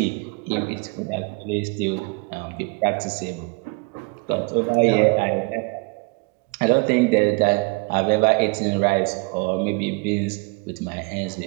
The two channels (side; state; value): left; quieter; 29.3 dB